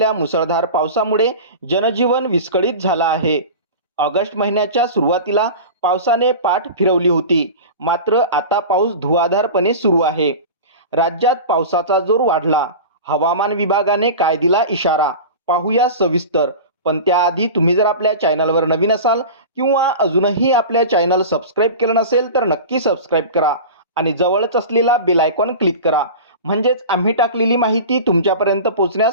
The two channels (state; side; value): inverted; both; correlation -0.31